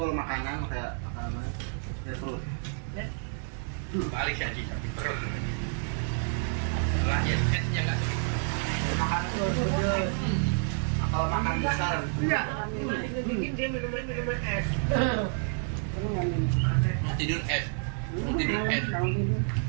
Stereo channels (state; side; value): silent; left; 56 dB below the other